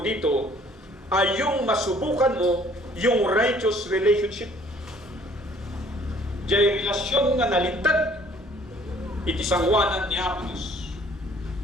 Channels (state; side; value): normal; both; correlation 0.57